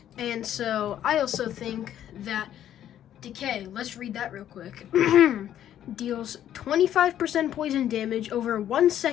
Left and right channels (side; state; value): right; quieter; 11.0 dB